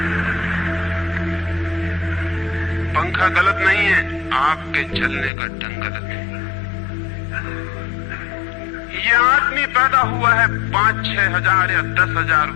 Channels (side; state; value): right; drops out; at 5.3 s